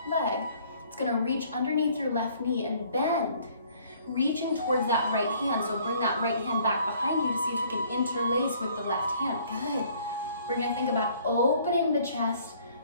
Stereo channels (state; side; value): inverted; both; correlation -0.59